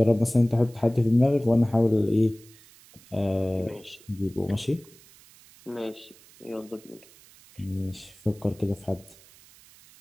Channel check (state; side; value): noise; right; hiss, 25 dB below the sound